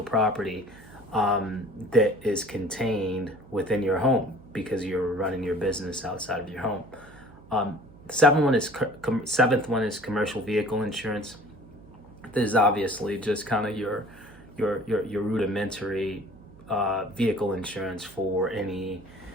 property that is contained within your home because you're running your business outside of your home. Seventh one is commercial vehicle insurance. This is obviously just kind of your rudimentary vehicle insurance for any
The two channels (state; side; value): noise; right; hum, 23 dB below the sound